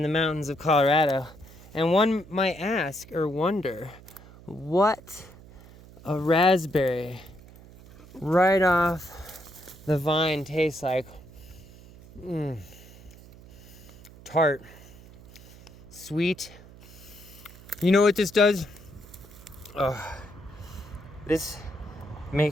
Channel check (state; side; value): noise; right; hum, 20 dB below the sound